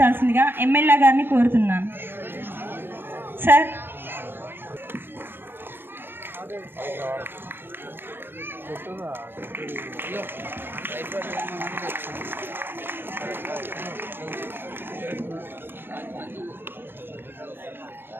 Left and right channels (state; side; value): late; left; 0.10 ms